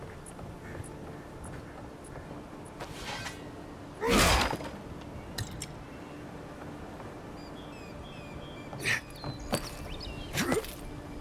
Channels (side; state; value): both; identical; correlation 1.00